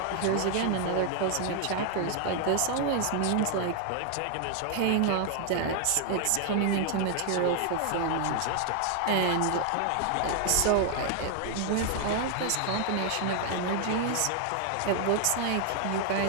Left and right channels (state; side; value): different; both; correlation 0.00